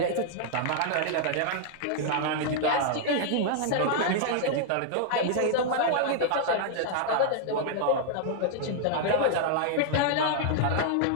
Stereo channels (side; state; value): both; different; correlation -0.01